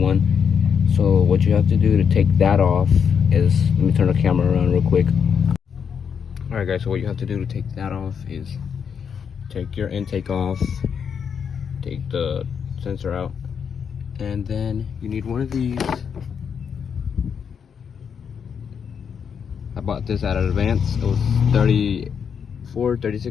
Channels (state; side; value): quieter; right; 7.0 dB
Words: So what you have to do to take that off is, let me turn the camera around real quick. Alright guys, so what you have to do to take that off is take your intake off, take the sensor out, and then you need one of these. I bought this at Advance. It was